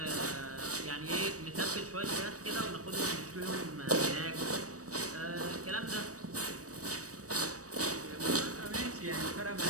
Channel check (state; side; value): late; left; 0.66 ms